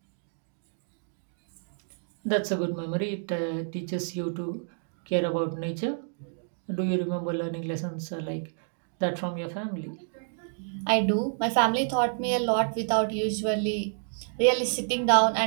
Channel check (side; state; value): left; silent; digital silence